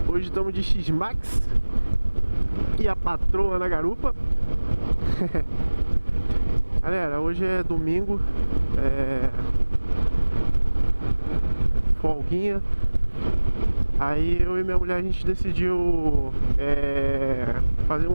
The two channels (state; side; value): inverted; both; correlation -1.00